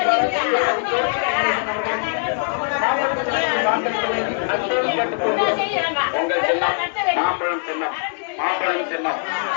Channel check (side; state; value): right; silent; digital silence